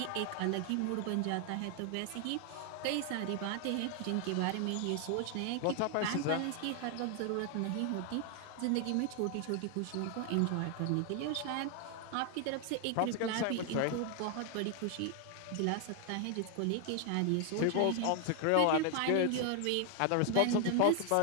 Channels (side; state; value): both; different; correlation 0.00